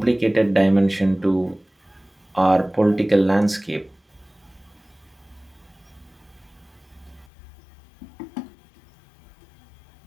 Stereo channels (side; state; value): right; drops out; at 7.2 s